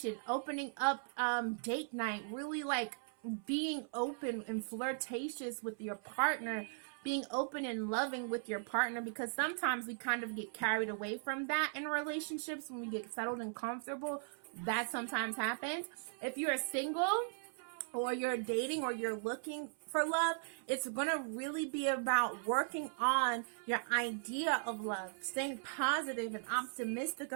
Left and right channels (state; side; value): silent; left; 52 dB below the other